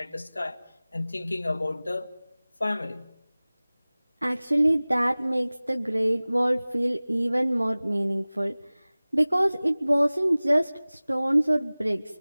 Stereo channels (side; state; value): both; inverted; correlation -0.99